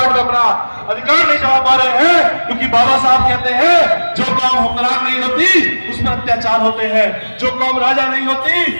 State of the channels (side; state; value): both; inverted; correlation -1.00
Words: में अपना अधिकार नहीं जमा पा रहे हैं। क्योंकि बाबा साहब कहते हैं, जो कौम हुक्मरान नहीं होती उस पर अत्याचार होते हैं, जो कौम राजा नहीं होती